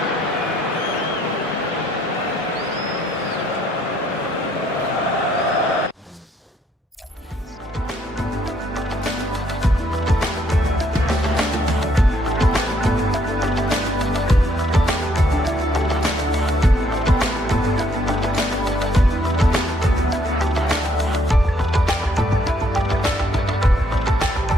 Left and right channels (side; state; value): both; normal; correlation 0.68